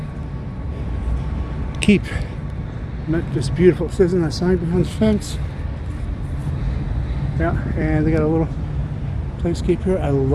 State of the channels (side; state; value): both; identical; correlation 1.00